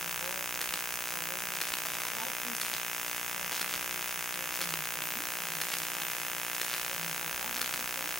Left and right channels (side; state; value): both; normal; correlation 0.75